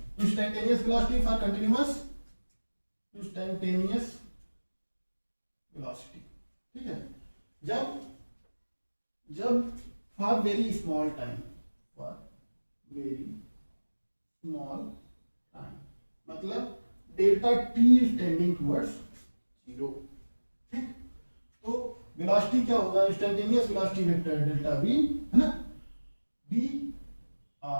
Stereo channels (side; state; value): both; inverted; correlation -1.00